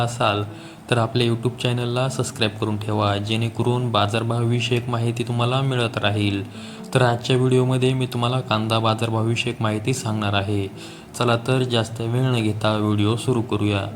तर आपल्या यूट्यूब चॅनलला सबस्क्राईब करून ठेवा, जेणेकरून बाजारभावविषयक माहिती तुम्हाला मिळत राहील. तर आजच्या व्हिडिओमध्ये मी तुम्हाला कांदा बाजारभावविषयक माहिती सांगणार आहे. चला तर जास्त वेळ न घेता व्हिडिओ सुरू करूया.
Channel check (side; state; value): both; identical; correlation 1.00